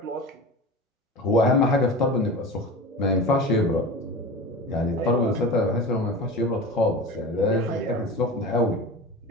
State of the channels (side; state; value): both; normal; correlation 0.31